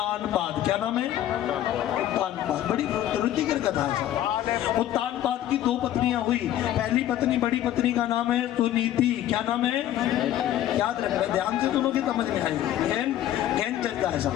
क्या नाम है? उत्तानपाद। बड़ी रुचिकर कथा है। उत्तानपाद की 2 पत्नियां हुई। पहली पत्नी, बड़ी पत्नी का नाम है सुनीति। क्या नाम है? याद रखना, ध्यान से सुनोगे समझ में आएगी। ज्ञान चलता है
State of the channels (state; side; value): quieter; right; 12.4 dB